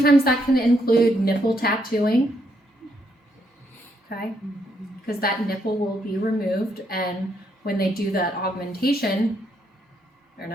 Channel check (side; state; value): both; normal; correlation 0.75